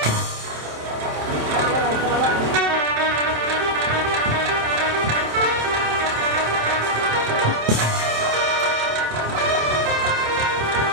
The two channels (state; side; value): late; left; 27 ms